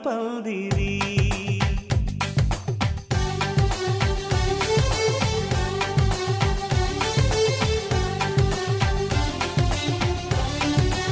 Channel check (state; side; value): identical; both; correlation 1.00